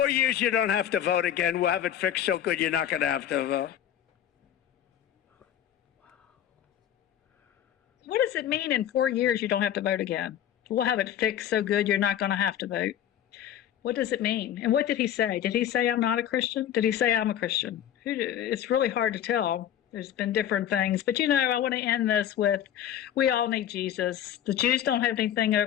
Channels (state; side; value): quieter; right; 10.5 dB